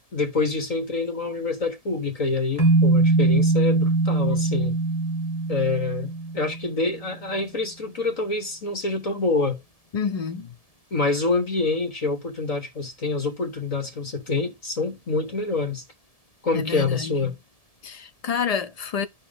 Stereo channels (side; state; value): right; late; 1.7 ms